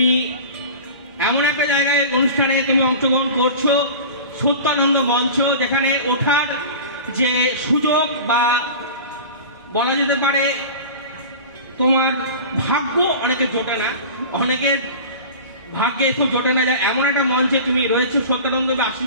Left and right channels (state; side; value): inverted; both; correlation -0.36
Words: এমন একটা জায়গায় অনুষ্ঠানে তুমি অংশগ্রহণ করছো, সত্যানন্দ মঞ্চ, যেখানে ওঠার যে সুযোগ বা বলা যেতে পারে তোমার ভাগ্য অনেকে জোটে না, অনেকের ভাগ্যে খুব জোটে না, যায় এমন একটা মঞ্চে তুমি রয়েছো, সত্যানন্দের